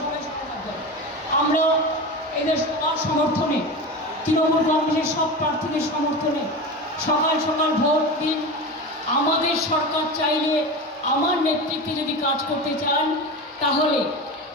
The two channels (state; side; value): normal; both; correlation 0.26